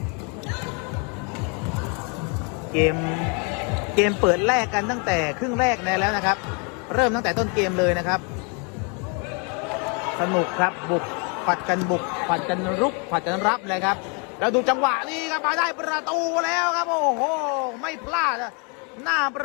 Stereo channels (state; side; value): quieter; right; 35.5 dB